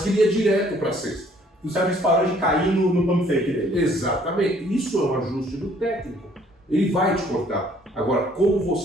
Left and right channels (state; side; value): normal; both; correlation 0.61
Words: ele ia direto para a cesta. O Sérgio parou de cair no pump fake dele. Exatamente, isso é um ajuste do técnico. Ele vai te cortar. Agora, como